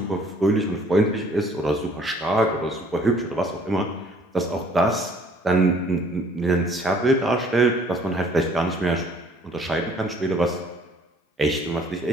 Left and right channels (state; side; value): normal; both; correlation 0.57